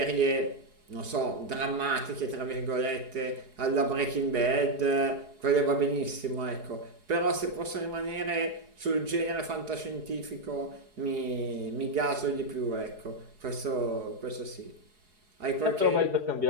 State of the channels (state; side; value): late; left; 4.7 ms